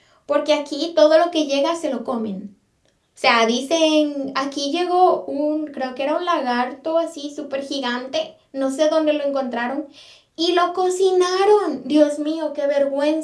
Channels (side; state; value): both; identical; correlation 1.00